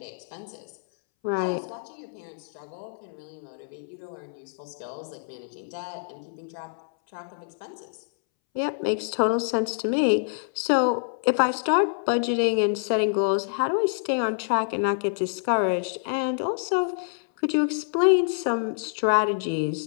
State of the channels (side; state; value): right; silent; 60 dB below the other